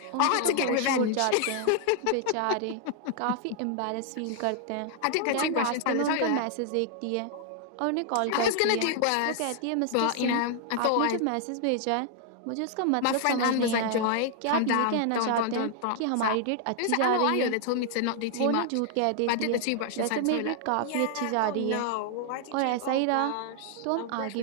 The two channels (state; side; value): different; both; correlation 0.00